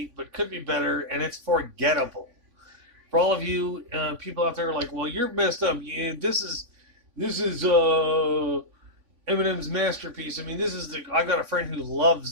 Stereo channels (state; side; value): late; left; 3.5 ms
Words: but could be better, and it's forgettable. For all of you people out there like, well, you're messed up. Yeah, this is Eminem's masterpiece. I mean, I got a friend who